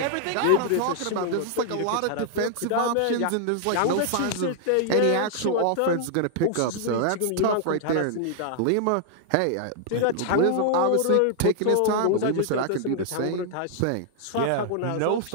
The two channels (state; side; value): different; both; correlation -0.01